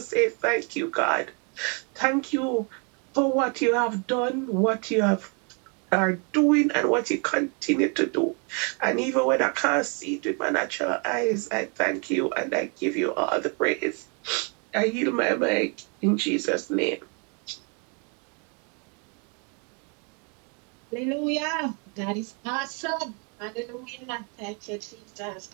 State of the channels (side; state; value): left; quieter; 36.4 dB